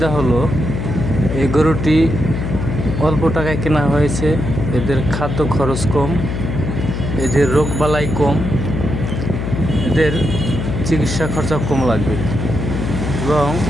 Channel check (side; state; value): left; noise; hum, 3 dB below the sound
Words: হলো, এই গরুটি অল্প টাকায় কেনা হয়েছে, এদের খাদ্য খরচ কম, এদের রোগবালাই কম, এদের চিকিৎসা খরচা কম লাগবে এবং